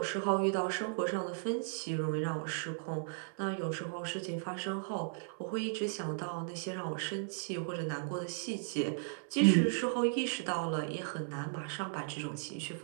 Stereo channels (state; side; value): silent; left; 54 dB below the other